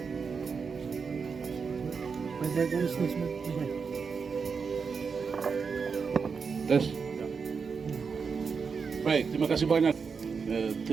Des. Baik, terima kasih banyak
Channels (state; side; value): quieter; left; 5.5 dB